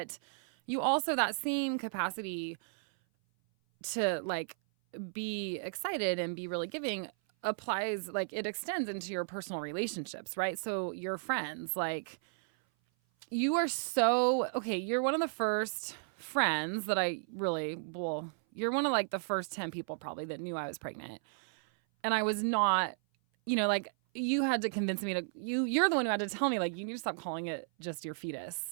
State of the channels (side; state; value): left; silent; 55 dB below the other